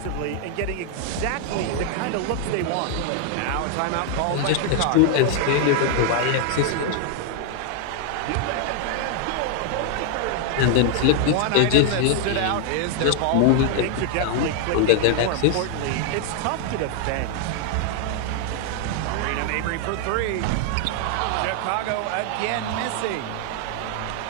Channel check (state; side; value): different; both; correlation 0.00